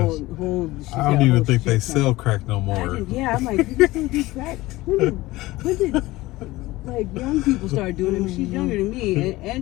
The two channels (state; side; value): quieter; right; 18.9 dB